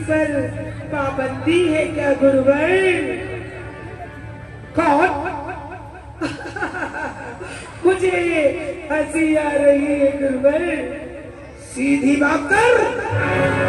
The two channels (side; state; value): both; identical; correlation 1.00